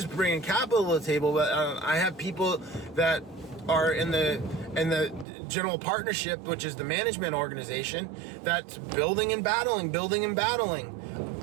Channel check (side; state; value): left; drops out; at 5.2 s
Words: bringing capital to the table. But I have people that are in the general partnership, which is the management organization, that's building and battling,